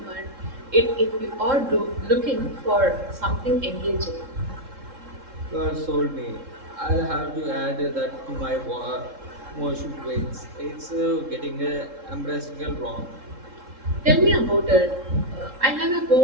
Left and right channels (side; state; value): left; late; 3.7 ms